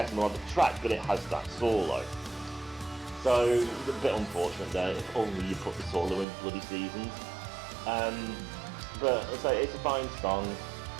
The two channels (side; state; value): left; drops out; at 6.2 s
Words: melodic track, but it has that solo. So, it's a bit unfortunate there, if only you put the solo in bloody Seasons. But it's a fine song.